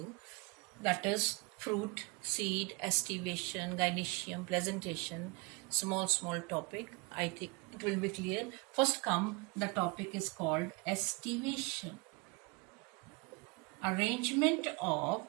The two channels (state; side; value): quieter; left; 29.1 dB